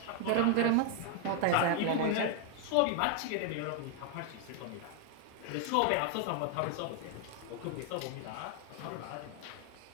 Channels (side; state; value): both; different; correlation 0.01